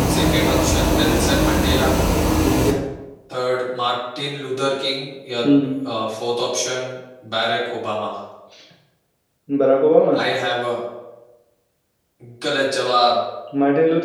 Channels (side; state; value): both; identical; correlation 1.00